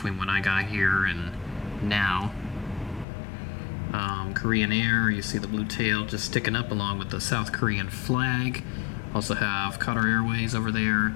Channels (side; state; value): right; drops out; at 3.1 s